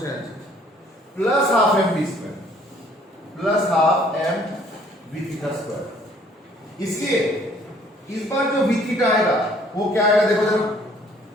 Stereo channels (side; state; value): both; normal; correlation 0.59